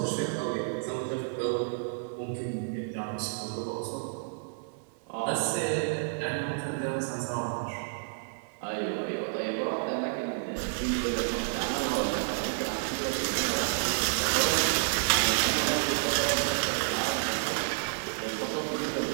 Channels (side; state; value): left; silent; digital silence